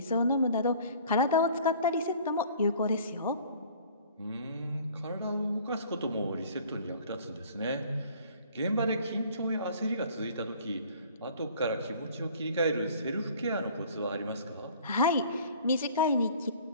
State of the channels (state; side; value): inverted; both; correlation -0.50